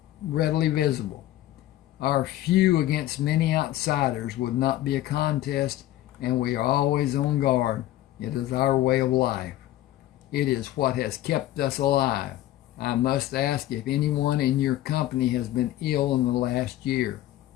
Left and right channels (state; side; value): quieter; right; 14.3 dB